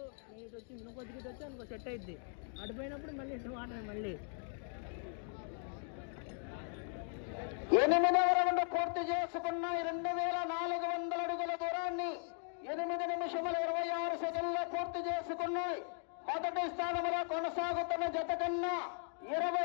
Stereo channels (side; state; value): right; silent; 52 dB below the other